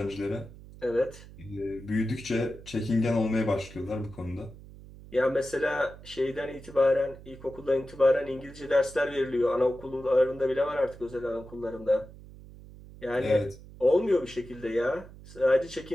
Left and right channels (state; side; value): noise; right; hum, 18 dB below the sound